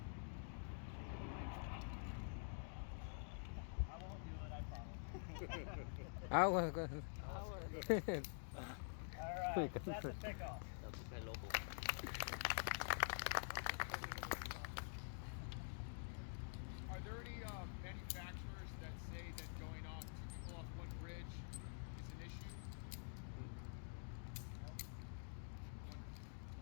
I won't do it, I promise. Alright, that's a pickoff. Are there any manufacturers that say that going off two people off one bridge is an issue?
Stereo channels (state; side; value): silent; right; digital silence